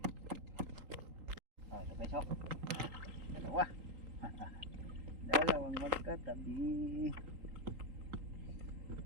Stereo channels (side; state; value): left; late; 3.8 ms